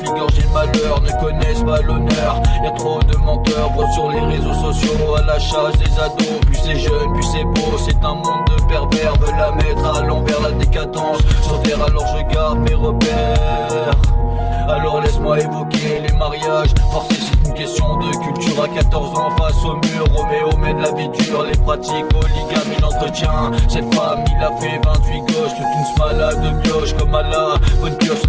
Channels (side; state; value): both; identical; correlation 1.00